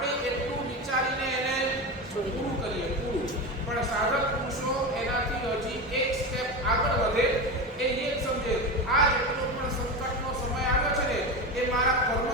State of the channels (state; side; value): normal; both; correlation 0.21